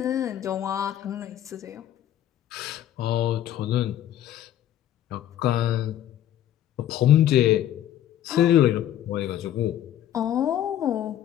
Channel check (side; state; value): right; quieter; 11.6 dB